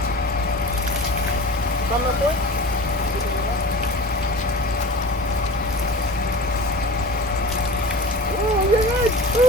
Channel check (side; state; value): both; normal; correlation 0.35